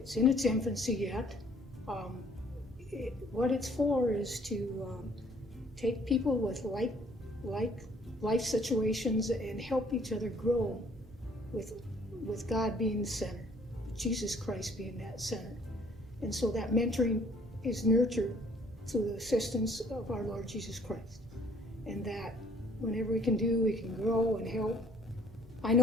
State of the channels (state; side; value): normal; both; correlation 0.59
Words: in its infancy yet. What it's for is to take people with like life situations and help each other grow with God being the center, Jesus Christ being that center. And so that mentoring is nurtured through the assistance of our Lord Jesus Christ. And that whenever we can do, we can grow and help. I